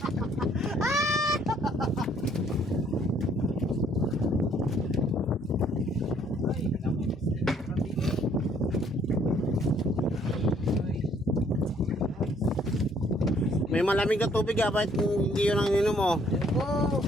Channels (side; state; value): both; normal; correlation 0.64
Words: May malamig na tubig, ah. Bakit hindi yun ang ininom mo? Ayoko.